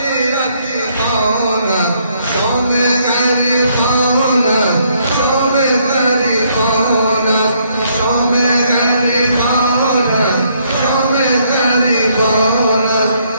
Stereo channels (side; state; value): both; inverted; correlation -0.70